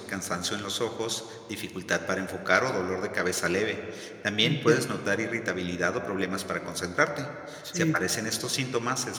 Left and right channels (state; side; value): identical; both; correlation 1.00